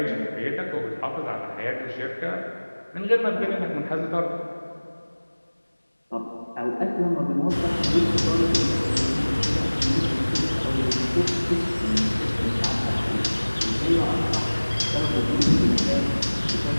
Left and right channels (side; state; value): both; inverted; correlation -1.00